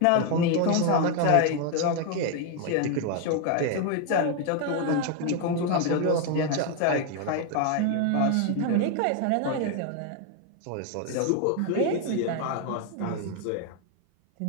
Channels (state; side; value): different; both; correlation 0.01